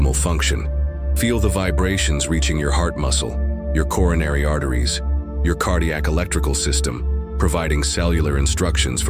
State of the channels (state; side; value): identical; both; correlation 1.00